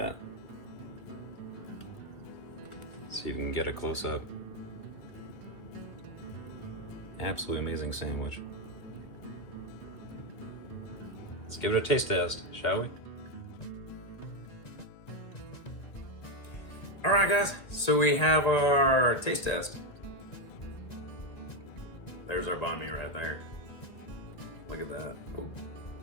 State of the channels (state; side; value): late; right; 2.1 ms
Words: See if you can get a close up. Absolutely amazing sandwich. Let's give it a taste test, shall we? All right, guys, so we have our taste test. There's our banh mi right there. Look at that. Oh.